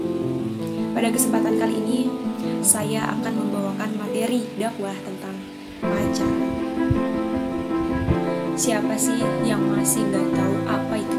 Pada kesempatan kali ini saya akan membawakan materi dakwah tentang pacaran. Siapa sih yang masih nggak tahu apa itu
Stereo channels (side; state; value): both; identical; correlation 1.00